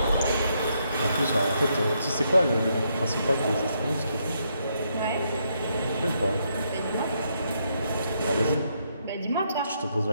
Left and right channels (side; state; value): both; inverted; correlation -0.76